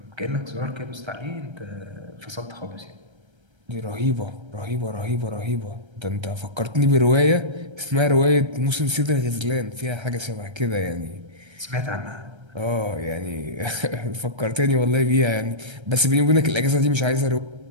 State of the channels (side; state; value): left; late; 1.3 ms